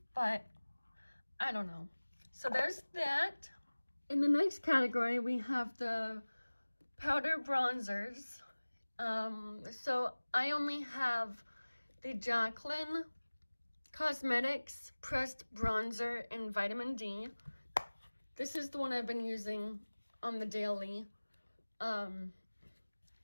but I don't know. So there's that. In the next category, we have the powder bronzers. So I only have the Jaclyn Cosmetics Pressed Bronzer in Vitamin D. This is the one I've been using on the daily. Doesn't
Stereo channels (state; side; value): inverted; both; correlation -1.00